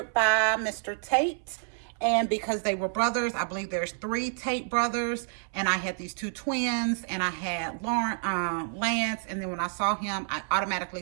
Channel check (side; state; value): left; silent; 58 dB below the other